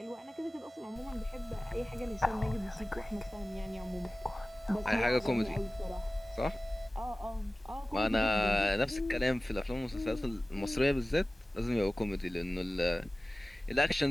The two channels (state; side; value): normal; both; correlation 0.97